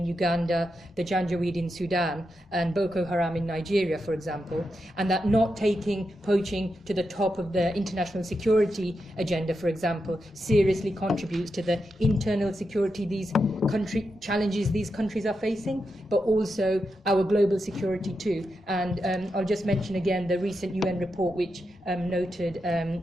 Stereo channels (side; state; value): both; normal; correlation 0.87